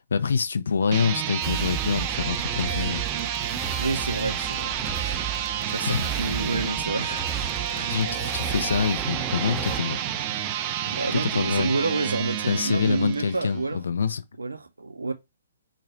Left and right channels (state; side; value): inverted; both; correlation -0.56